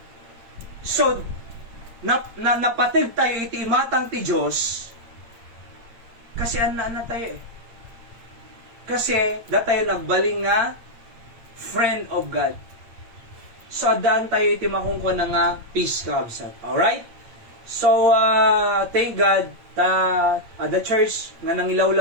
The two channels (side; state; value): left; late; 8.7 ms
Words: so, napatid tayo iti imatang ti Diyos, kasi ana tayo eh. Kasi, tayo nagbaling nga, friend of God. So, adaan tayo iti makungko na nga, peace kabsat. Alright? So, thank God, the church nga